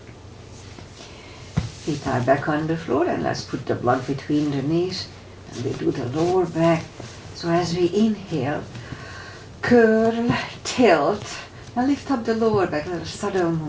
Feet are back on the floor, and let's put the block between the knees, and we do the lower back. So as we inhale, curl, tilt, and lift up the lower back, little subtle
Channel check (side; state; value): both; identical; correlation 1.00